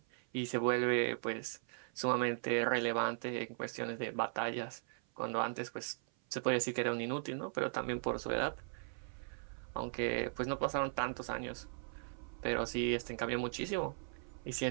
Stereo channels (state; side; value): silent; left; 52 dB below the other